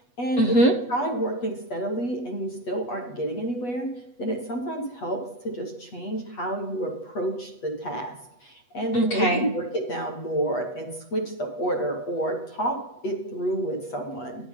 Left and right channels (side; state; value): right; late; 8.2 ms